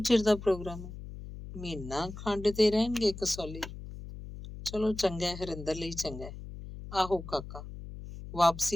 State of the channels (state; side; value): noise; left; hum, 12 dB below the sound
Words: ਚਿਰ ਦਾ ਪ੍ਰੋਗਰਾਮ ਹੈ? ਮਹੀਨਾ ਖੰਡ ਤੇ ਰਹਿਣਗੇ ਕਸੌਲੀ। ਚਲੋ ਚੰਗਾ, ਹਰਿੰਦਰ ਲਈ ਚੰਗਾ। ਆਹੋ ਕਾਕਾ